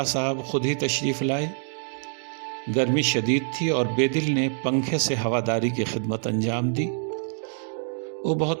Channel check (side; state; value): left; silent; 61 dB below the other